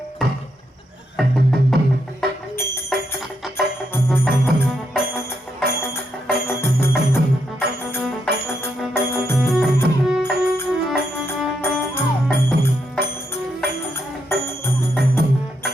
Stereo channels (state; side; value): normal; both; correlation 0.79